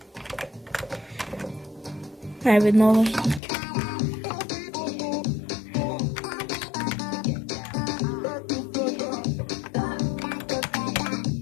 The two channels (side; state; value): right; drops out; at 3.4 s